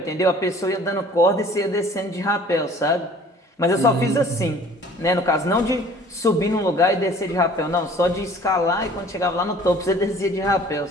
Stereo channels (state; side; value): normal; both; correlation 0.50